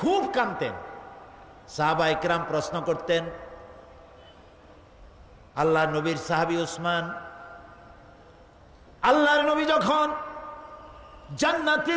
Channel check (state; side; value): identical; both; correlation 1.00